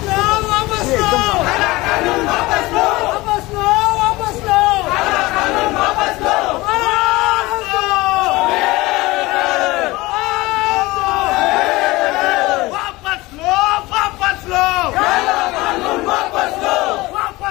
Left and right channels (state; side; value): quieter; right; 20.8 dB